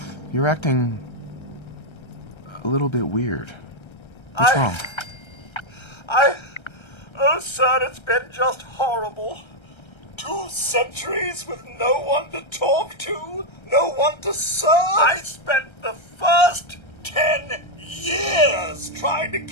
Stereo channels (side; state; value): right; late; 1.3 ms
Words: you're acting a little bit weird. What's wrong? Oh, sir, it's been just horrible. 2 centuries with no one to talk to, no one to serve. I spent the first 10 years trying to